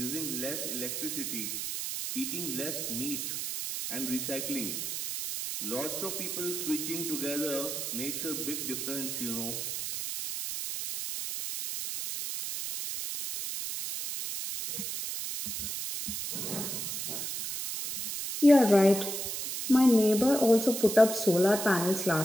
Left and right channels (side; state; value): right; noise; hiss, 4 dB below the sound